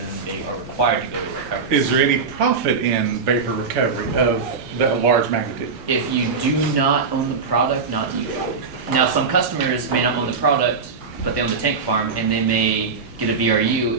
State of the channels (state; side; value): quieter; left; 5.0 dB